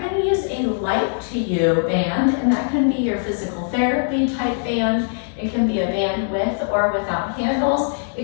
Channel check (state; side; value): silent; right; digital silence